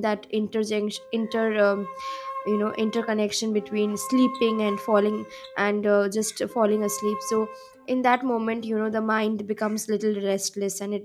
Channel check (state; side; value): identical; both; correlation 1.00